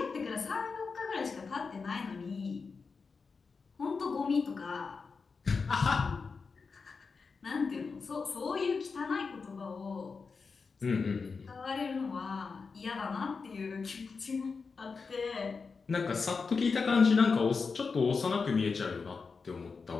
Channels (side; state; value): right; quieter; 4.9 dB